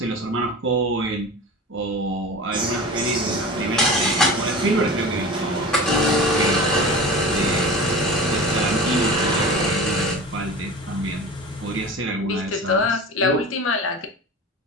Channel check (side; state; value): both; normal; correlation 0.33